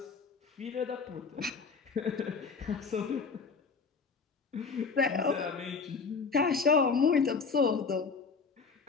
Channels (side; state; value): right; quieter; 5.0 dB